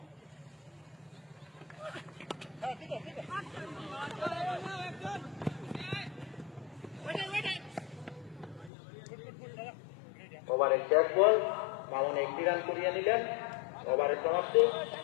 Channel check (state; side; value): drops out; right; at 8.7 s